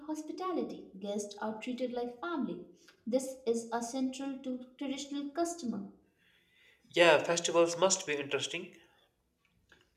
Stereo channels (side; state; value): both; identical; correlation 1.00